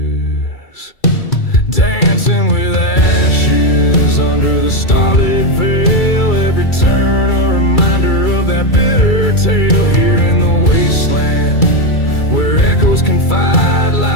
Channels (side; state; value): right; late; 2.3 ms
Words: Dancing with ashes under the starlit veil. Every turn a reminder of that bitter tale. Here in the wasteland where echoes confide,